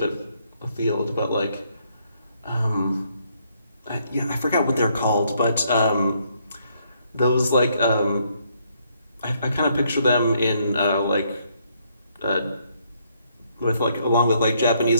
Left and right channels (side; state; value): both; inverted; correlation -0.71